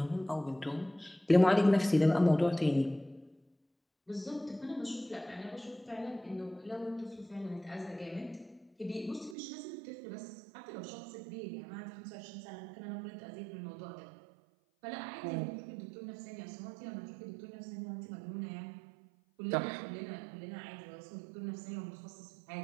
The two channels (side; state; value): left; drops out; at 9.3 s